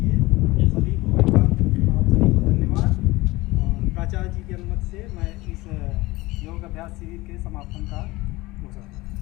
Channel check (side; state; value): right; quieter; 20.4 dB